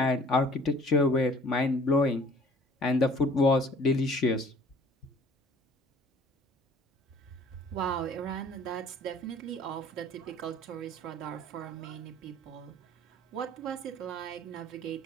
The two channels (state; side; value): normal; both; correlation 0.52